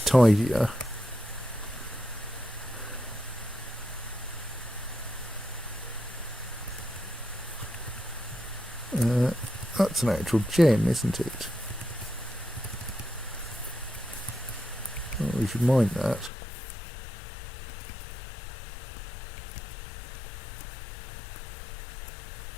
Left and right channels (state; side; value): drops out; right; at 16.3 s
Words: tidier. That's an actual gem, isn't it? Oh, we should mine that.